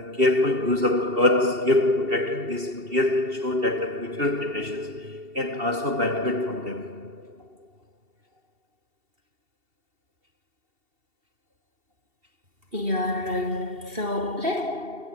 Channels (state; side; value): late; left; 2.7 ms